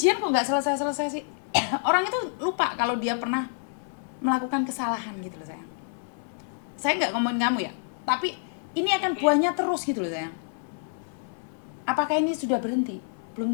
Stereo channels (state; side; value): silent; right; 60 dB below the other